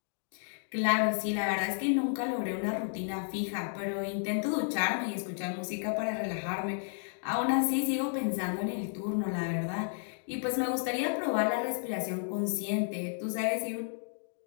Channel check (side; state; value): right; silent; digital silence